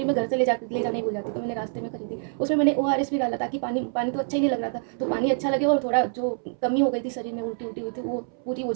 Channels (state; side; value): silent; left; 61 dB below the other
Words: मैं घर से ले जाने ही भूल जाती, तो मैंने रास्ते में खरीदी। उसमें मैंने ORS भी डाला ताकि पानी पानी तो अच्छा ही नहीं लग रहा था, तो पानी अच्छा लगे और थोड़ा जो कमी हो गई थी शरीर में, उल्टी उल्टी हुई थी, वो पूरी हो